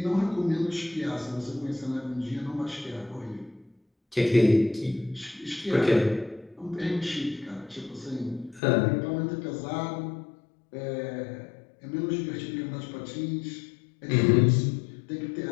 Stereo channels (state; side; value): drops out; right; at 8.6 s